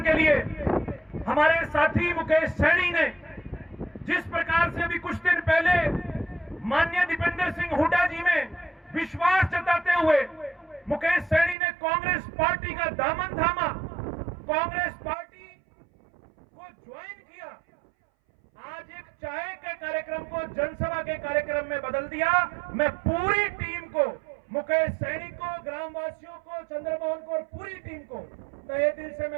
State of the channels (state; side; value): drops out; left; at 11.6 s